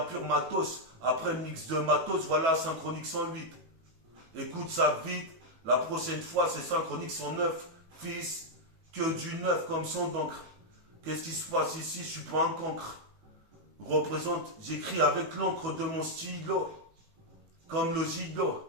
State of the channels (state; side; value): late; left; 18 ms